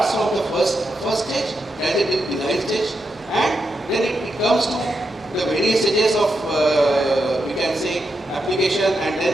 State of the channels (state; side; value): normal; both; correlation 0.85